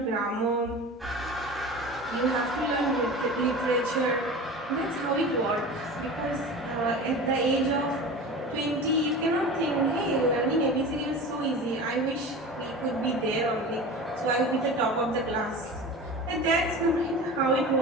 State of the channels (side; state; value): both; normal; correlation 0.33